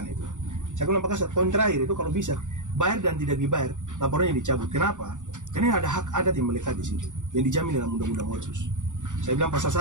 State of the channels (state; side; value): late; left; 0.86 ms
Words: itu. Saya bilang Pak Kasat, poin terakhir itu kalau bisa bayar dan tidak dibayar, laporannya dicabut. Kenapa? Karena ada hak adat yang melekat di situ, yang dijamin dalam Undang-Undang Otsus. Saya bilang pasal